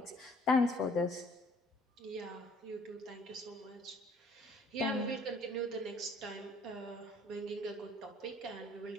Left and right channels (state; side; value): normal; both; correlation 0.59